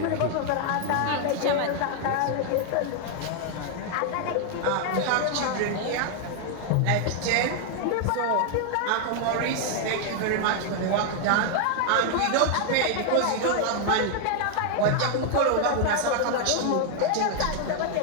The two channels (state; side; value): different; both; correlation 0.00